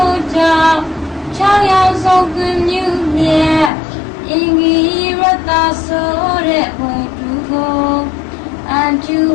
ု့ကြောင့်6ယောက်ဆုံးကွင်မြူမြတ်အင်္ဂိရတဆိုတဲ့ဘုသူကိုအကျု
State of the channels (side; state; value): right; drops out; at 3.7 s